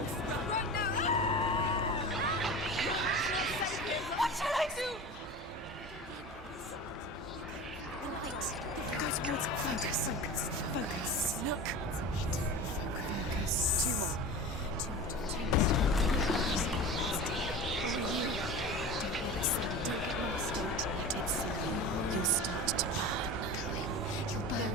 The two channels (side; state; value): both; normal; correlation 0.33